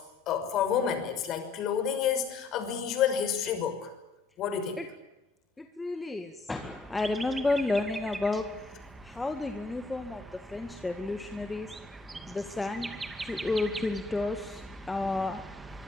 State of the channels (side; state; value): right; quieter; 4.1 dB